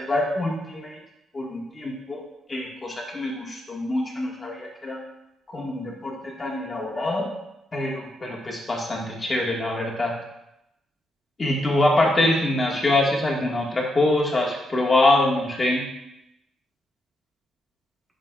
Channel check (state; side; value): normal; both; correlation 0.82